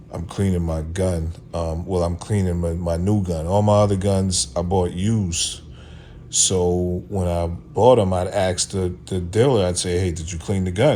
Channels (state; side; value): identical; both; correlation 1.00